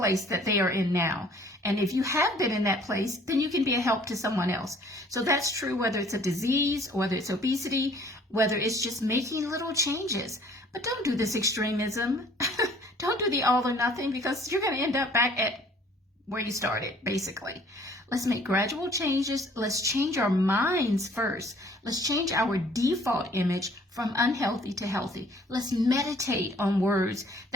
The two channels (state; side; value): normal; both; correlation 0.56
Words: that they are in now. And if you have been in that place, then you can be a help to someone else. So that's true whether it's a disease, whether it's obesity, whether it's just making little changes. But don't do this extremism. Don't do the all or nothing, because you're going to end up back at where you started, basically. Let's make gradual changes. Let's change our minds first. Let's change our default image from unhealthy to healthy. Let's meditate on words